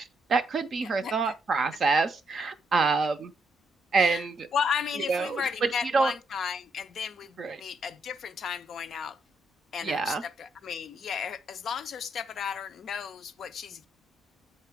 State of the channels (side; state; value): both; normal; correlation 0.76